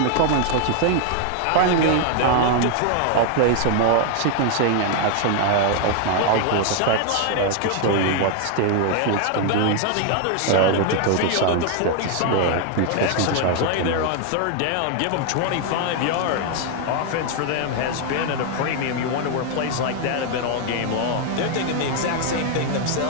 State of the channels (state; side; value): different; both; correlation 0.01